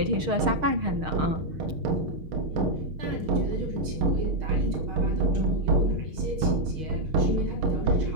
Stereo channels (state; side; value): late; left; 6.5 ms